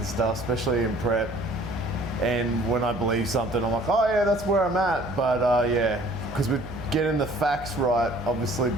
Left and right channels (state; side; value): noise; right; hum, 15 dB below the sound